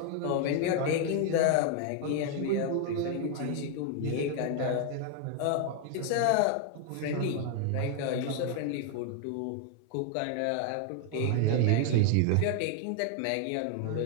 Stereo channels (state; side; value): different; both; correlation 0.01